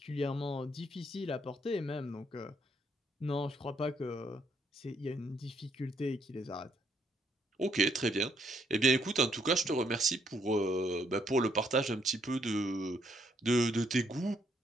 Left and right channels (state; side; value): normal; both; correlation 0.71